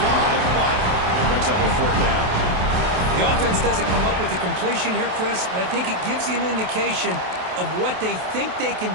but it brings up a fourth down. The offense doesn't come up with the completion here, Chris, but I think it gives you an indication of what they think they can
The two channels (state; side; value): late; left; 27 ms